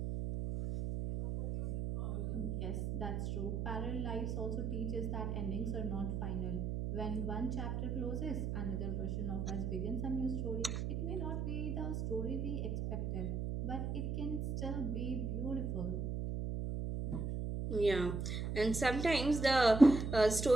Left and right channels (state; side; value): noise; right; hum, 2 dB below the sound